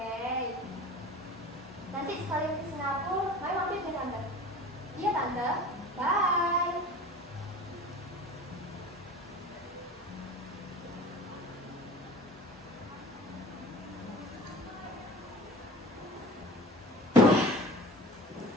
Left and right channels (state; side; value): normal; both; correlation 0.39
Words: Nanti sekalian ke Singapura, Maya mampir ke Tante. Iya Tante, bye.